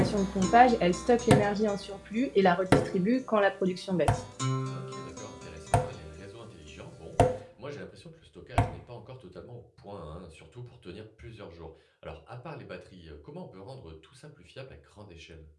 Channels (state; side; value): identical; both; correlation 1.00